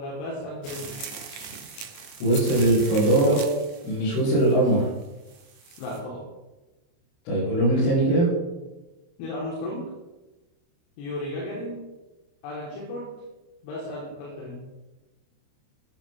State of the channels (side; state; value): right; late; 29 ms